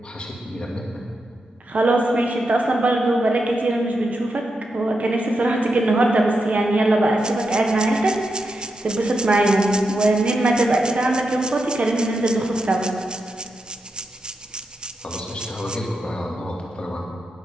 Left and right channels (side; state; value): both; normal; correlation 0.86